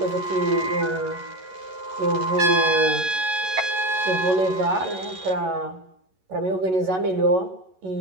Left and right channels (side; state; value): left; late; 11 ms